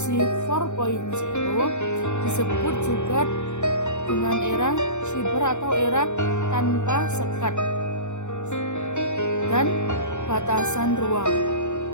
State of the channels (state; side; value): late; right; 0.84 ms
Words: 4.0 disebut juga dengan era siber atau era tanpa sekat dan batasan ruang